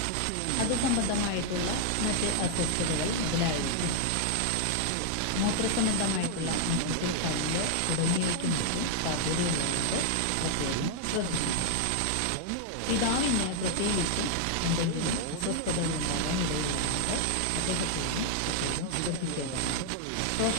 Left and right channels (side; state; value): both; different; correlation 0.00